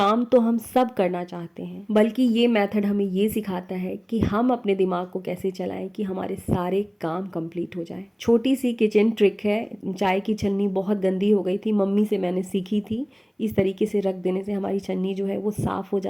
तो हम सब करना चाहते हैं, बल्कि ये मेथड हमें ये सिखाता है कि हम अपने दिमाग को कैसे चलाएं कि हमारे सारे काम कंप्लीट हो जाए। छोटी सी किचन ट्रिक है। चाय की छन्नी बहुत गंदी हो गई थी, मम्मी से मैंने सीखी थी। इस तरीके से रख देने से हमारी छन्नी जो है वो साफ हो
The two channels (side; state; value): both; identical; correlation 1.00